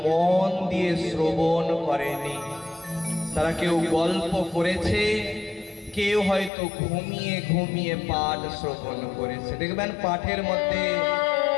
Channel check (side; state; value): right; drops out; at 6.5 s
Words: মন দিয়ে শ্রবণ করেনি, তারা কেউ গল্প করেছে, কেউ হয়তো ঘুমিয়ে ঘুমিয়ে পাঠ শ্রবণ করেছে। দেখবেন পাঠের মধ্যে